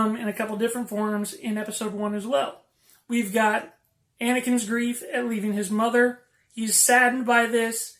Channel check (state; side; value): identical; both; correlation 1.00